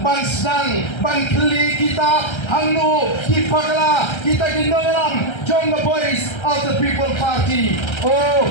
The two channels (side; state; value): right; late; 1.3 ms